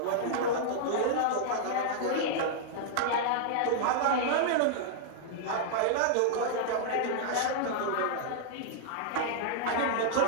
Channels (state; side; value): different; both; correlation -0.01